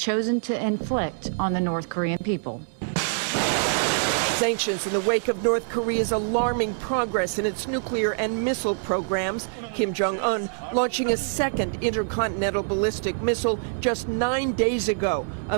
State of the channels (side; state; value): left; silent; digital silence